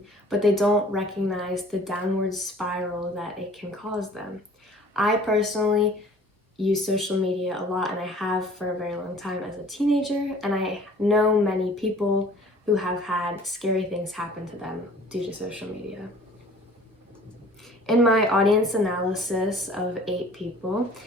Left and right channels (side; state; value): both; normal; correlation 0.50